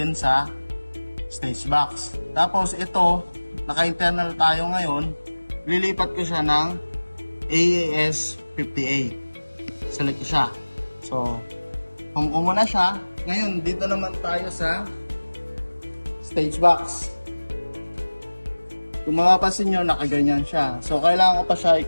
sa stage box. Tapos ito, naka-internal tayo ngayon, lilipat ko siya ng AES50A. Select ko siya. So, kung muna siya, ngayon, dito naman tayo sa stage box. Kung mapapansin nyo, nakaganyan siya. So, kailangan ko pa siya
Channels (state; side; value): inverted; both; correlation -1.00